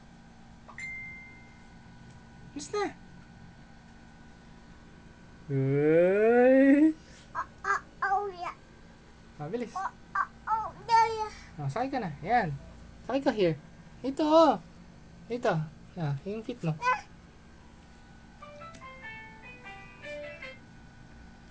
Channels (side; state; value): both; identical; correlation 1.00